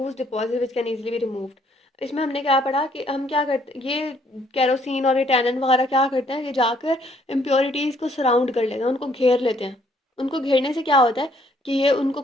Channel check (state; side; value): normal; both; correlation 0.66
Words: deposit which can easily be removed। इसमें हमने क्या पढ़ा कि हम क्या करते, ये केरोसिन और ये टैनन वगैरह क्या करते हैं कि जाकर इम्प्योरिटीज़ को सराउंड कर लेते हैं, उनको घेर लेते हैं। उनको घेरने से क्या होता है कि ये उनको